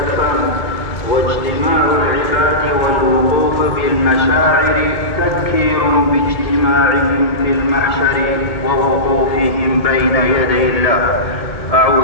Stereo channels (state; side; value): late; right; 2.2 ms